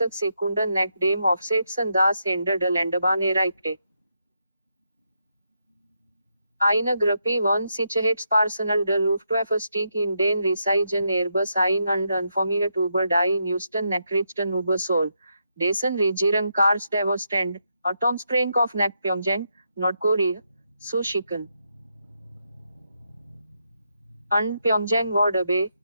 Sekunden nach dem Aufsetzen das Ende der Landebahn erreichte. Eine Gruppe von Sicherheitspersonal der Luftwaffe stieg in den riesigen Airbus ein und informiert über die neuesten Nachrichten über Seoul, dessen Regierung Kars Devasstand, Atomspreng auf nach Pyongyang, Nordkorea, zu schicken. Und Pyongyang war dabei,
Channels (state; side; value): inverted; both; correlation -0.81